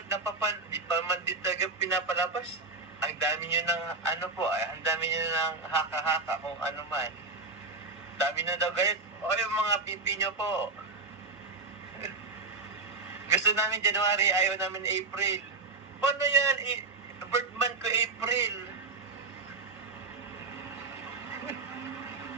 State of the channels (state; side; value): quieter; left; 3.8 dB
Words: pinapalabas. Ang dami nyo ng ang dami nyo ng haka-haka kung ano man. Dami na daw gayat. O yung mga pipi nyo po. Gusto namin January, ayaw namin April. Paano yan? Birth month ko April.